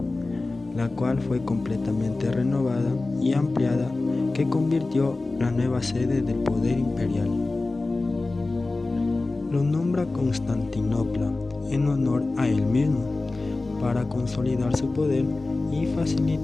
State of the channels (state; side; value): quieter; right; 3.3 dB